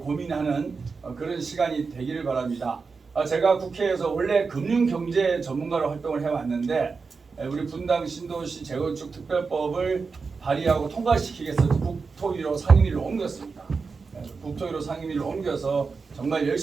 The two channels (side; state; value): left; quieter; 4.8 dB